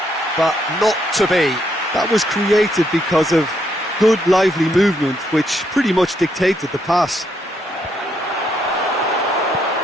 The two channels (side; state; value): both; normal; correlation 0.75